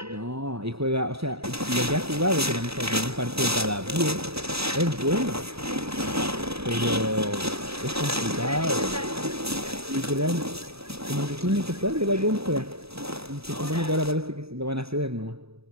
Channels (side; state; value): left; late; 0.77 ms